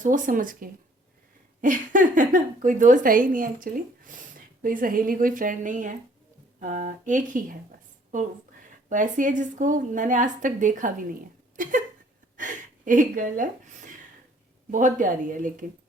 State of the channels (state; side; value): normal; both; correlation 0.59